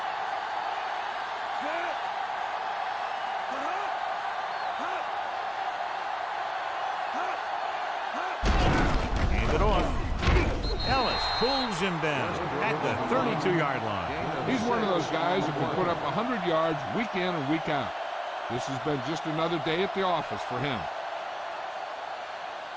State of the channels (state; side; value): identical; both; correlation 1.00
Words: Pulls him down at the 32-yard line. He's one of those guys who can put up 100 yards week in and week out. This has been just another day at the office for him.